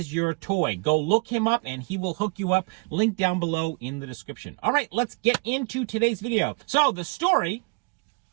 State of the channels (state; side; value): quieter; left; 31.9 dB